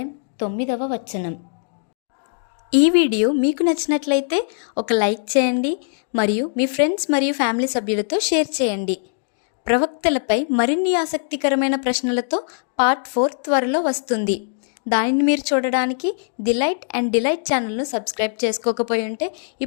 9వ వచనం. ఈ వీడియో మీకు నచ్చినట్లయితే ఒక లైక్ చేయండి మరియు మీ ఫ్రెండ్స్ మరియు ఫ్యామిలీ సభ్యులతో షేర్ చేయండి. ప్రవక్తలపై మరిన్ని ఆసక్తికరమైన ప్రశ్నలతో పార్ట్ 4 త్వరలో వస్తుంది. దానిని మీరు చూడడానికి డిలైట్ అండ్ డిలైట్ ఛానల్ను సబ్స్క్రైబ్ చేసుకోకపోయి ఉంటే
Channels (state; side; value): silent; right; digital silence